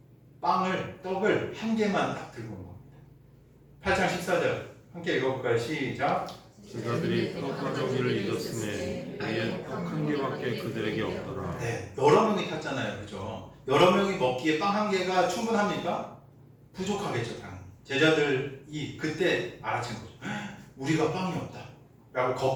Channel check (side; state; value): both; identical; correlation 1.00